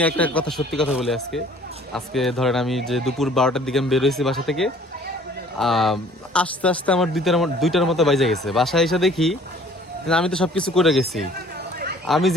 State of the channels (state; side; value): normal; both; correlation 0.53